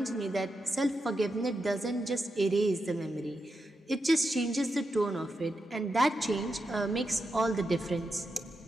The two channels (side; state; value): both; normal; correlation 0.87